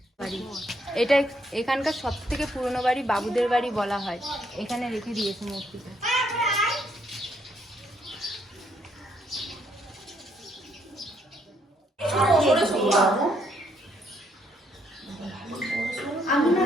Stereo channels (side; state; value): both; normal; correlation 0.72